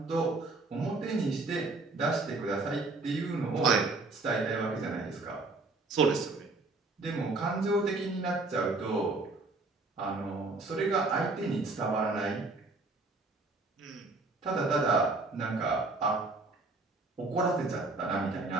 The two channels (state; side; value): quieter; left; 3.4 dB